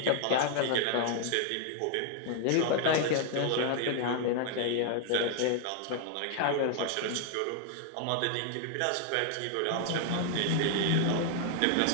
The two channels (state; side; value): different; both; correlation 0.00